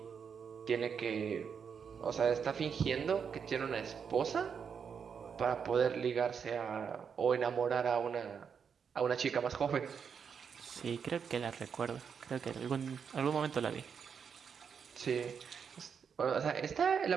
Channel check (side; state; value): left; quieter; 6.7 dB